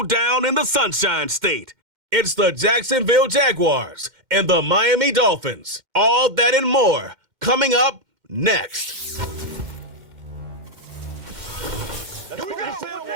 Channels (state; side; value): late; left; 2.1 ms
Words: in the Sunshine State. It's the Jacksonville Jaguars and the Miami Dolphins. All that and more coming up next.